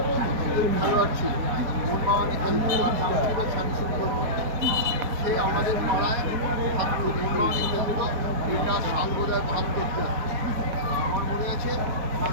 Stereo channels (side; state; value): left; late; 4.5 ms